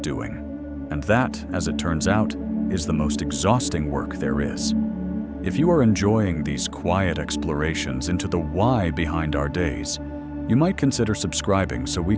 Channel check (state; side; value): identical; both; correlation 1.00